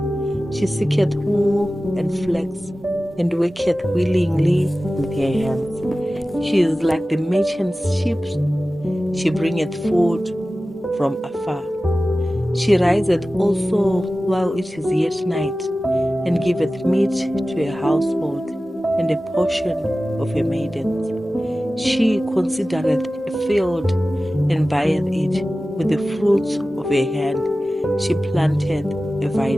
She seeketh wool and flax, and worketh willingly with her hands. She is like the merchant's ship. She bringeth food from afar. She riseth also while it is yet night, and giveth meat to her household, and a portion of her maidens. She considereth a field, and buyeth it. With the fruits of her hand she planteth a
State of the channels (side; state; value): both; normal; correlation 0.96